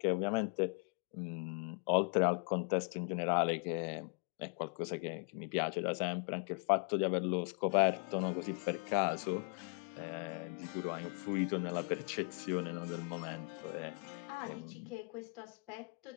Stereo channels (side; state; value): right; quieter; 35.5 dB